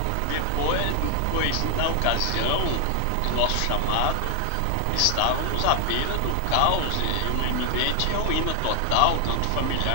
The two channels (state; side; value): different; both; correlation 0.00